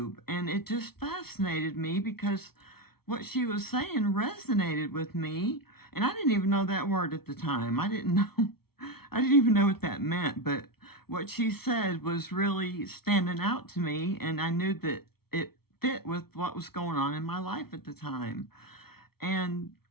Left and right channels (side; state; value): right; late; 0.95 ms